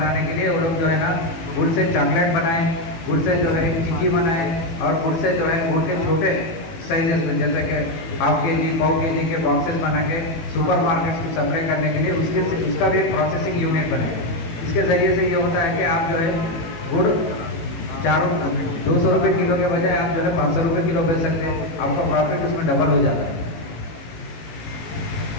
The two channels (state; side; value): late; right; 19 ms